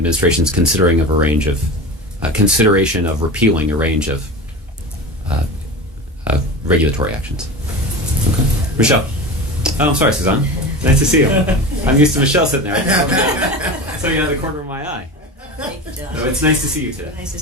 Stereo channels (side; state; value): both; normal; correlation 0.29